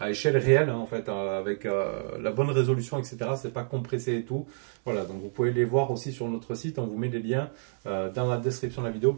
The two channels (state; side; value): silent; left; digital silence